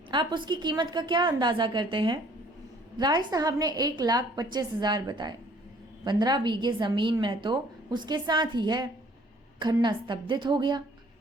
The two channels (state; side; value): normal; both; correlation 0.57